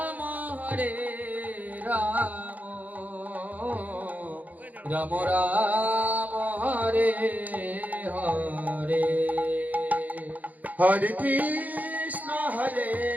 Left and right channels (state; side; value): late; left; 0.079 ms